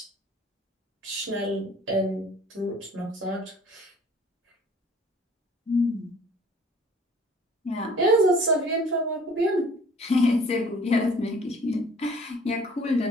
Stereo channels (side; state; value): both; normal; correlation 0.52